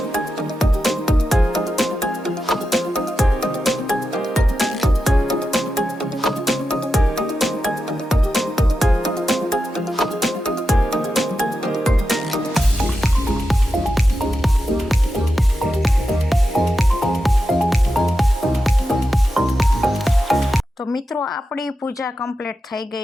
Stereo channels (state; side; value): normal; both; correlation 0.89